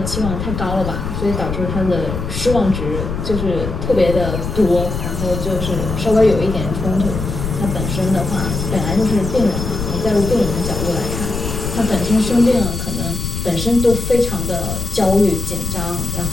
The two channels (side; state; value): left; noise; rumble, 4 dB below the sound